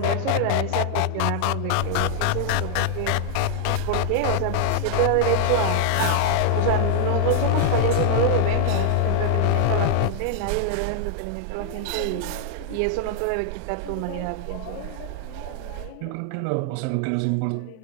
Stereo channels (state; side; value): different; both; correlation 0.00